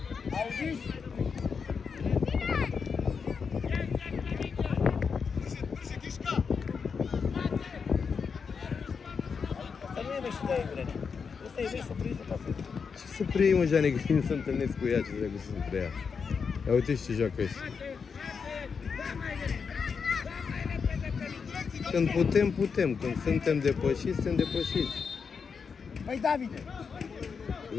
Auziți? Asta nu e mești de Ivrene. Asta e mești să prinzi să pasă. Ce să preiei, mă, Jane, că nu se întâlnesc cu ea, ce trebuie să se preia. Ia uite și ce joacă ăștia. Când putem, putem. Când suntem depășiți, suntem depășiți. Păi, Davide!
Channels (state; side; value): quieter; right; 5.8 dB